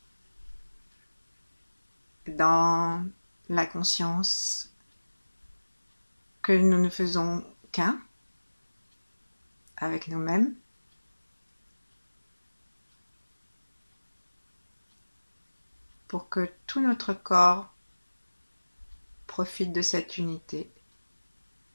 Dans la conscience que nous ne faisons qu'un avec nous-mêmes, pour que tout notre corps profite de cette unité.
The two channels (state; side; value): inverted; both; correlation -1.00